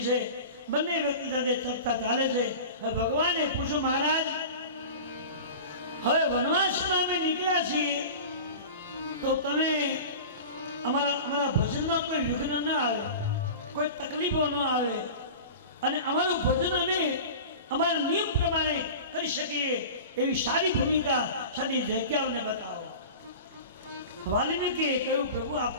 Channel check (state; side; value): inverted; both; correlation -0.35